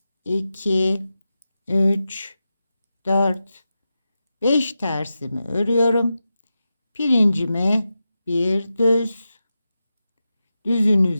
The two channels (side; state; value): both; inverted; correlation -0.91